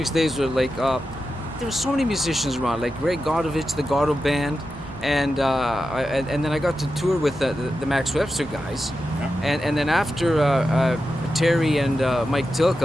days were there were so many musicians around, like Ray Godovich, the Gordo Band, and then I got to tour with the Max Webster guys, and then after Terry and Mike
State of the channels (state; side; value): normal; both; correlation 0.90